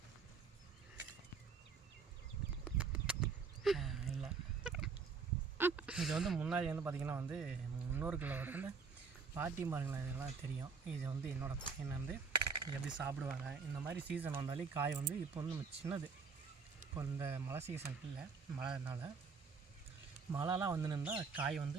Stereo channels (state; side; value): quieter; left; 5.2 dB